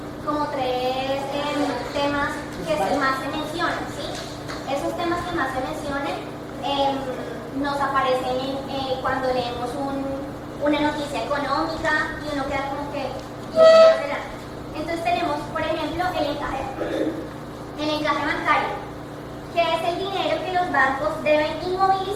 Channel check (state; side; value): identical; both; correlation 1.00